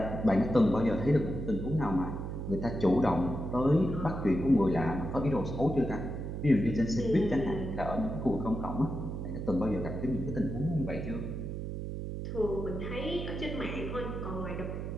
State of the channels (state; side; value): noise; right; hum, 5 dB below the sound